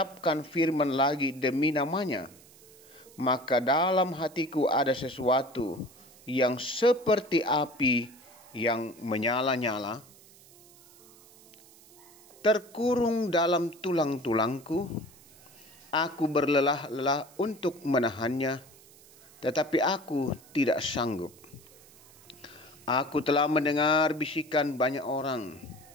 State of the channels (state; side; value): noise; right; hiss, 24 dB below the sound